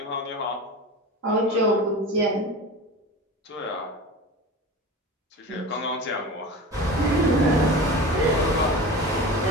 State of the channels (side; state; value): both; normal; correlation 0.32